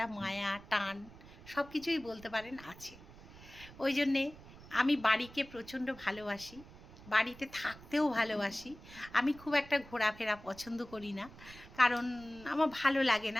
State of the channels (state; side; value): noise; right; rumble, 19 dB below the sound